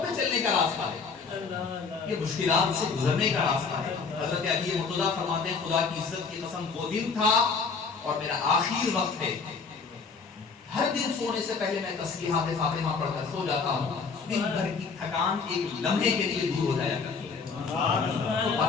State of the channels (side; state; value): right; quieter; 5.0 dB